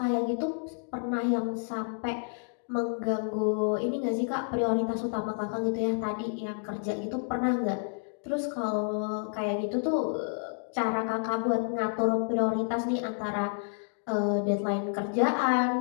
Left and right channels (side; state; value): right; silent; 58 dB below the other